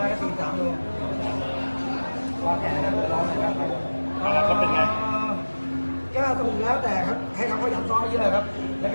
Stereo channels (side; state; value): both; inverted; correlation -1.00